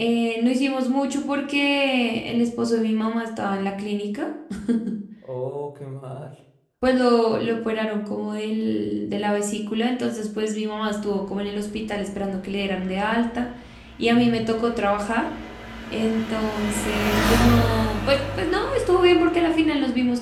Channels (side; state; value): both; identical; correlation 1.00